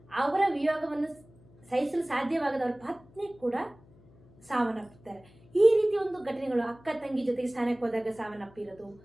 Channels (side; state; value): left; noise; hum, 26 dB below the sound